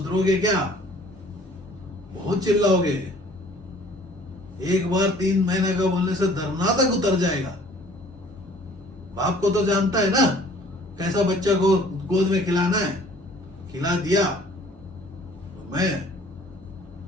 क्या? बहुत चिल्लाओगे। एक बार 3 महीने का बोलने से धरना तक उतर जाएगा। बाप को तो जानता है ना कैसा बच्चा को गोद में खिलाना है, खिला दिया। तो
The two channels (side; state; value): both; normal; correlation 0.54